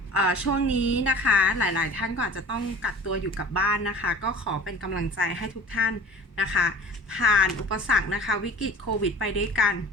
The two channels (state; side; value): normal; both; correlation 0.42